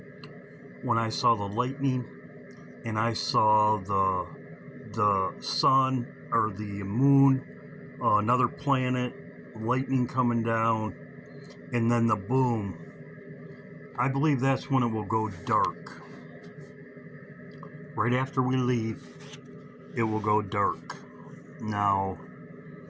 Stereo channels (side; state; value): both; identical; correlation 1.00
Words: and I saw the sun or the moon, another planet, lightning coming down, and then the boom, I believe that's when it will go dark. Right after we leave, it will go dark. Now,